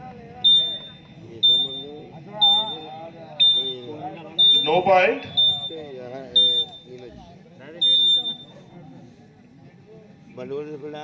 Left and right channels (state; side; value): identical; both; correlation 1.00